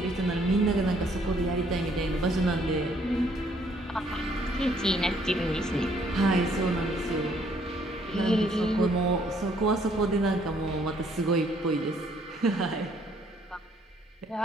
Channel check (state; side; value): normal; both; correlation 0.65